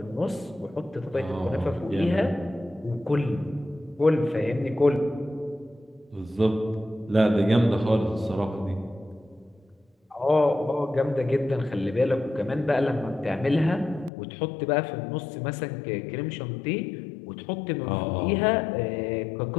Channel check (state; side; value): drops out; right; at 14.1 s